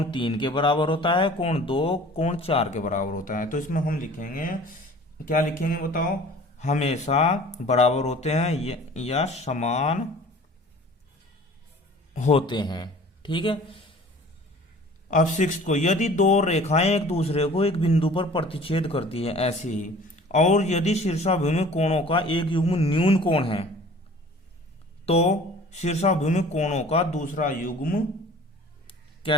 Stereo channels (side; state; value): both; normal; correlation 0.46